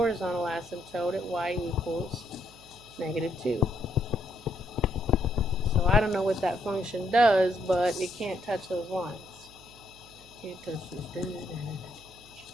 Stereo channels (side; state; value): right; noise; hum, 24 dB below the sound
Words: asymptote at y equals negative 2. So I don't know what that function does, but it can't touch those lines. Can't touch those.